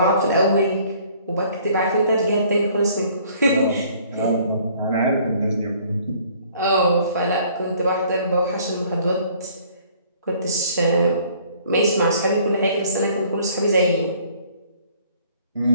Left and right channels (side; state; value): both; inverted; correlation -0.58